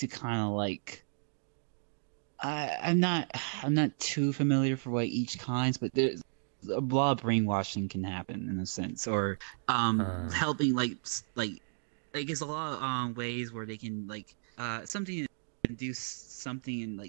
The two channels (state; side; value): silent; left; digital silence